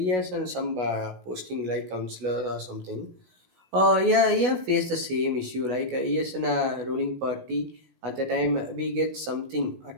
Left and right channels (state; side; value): late; left; 16 ms